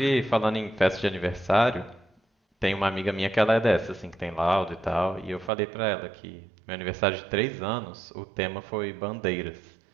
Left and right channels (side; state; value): left; drops out; at 5.5 s